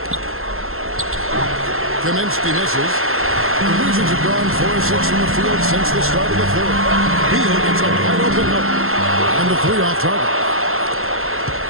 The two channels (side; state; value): left; late; 0.61 ms